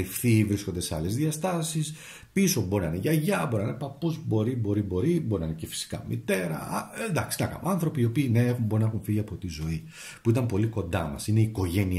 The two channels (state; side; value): identical; both; correlation 1.00